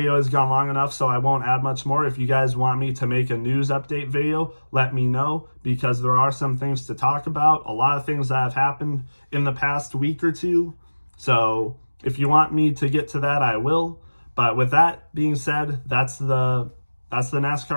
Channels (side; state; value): both; inverted; correlation -1.00